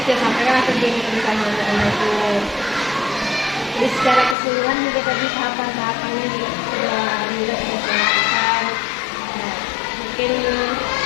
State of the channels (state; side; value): drops out; right; at 4.4 s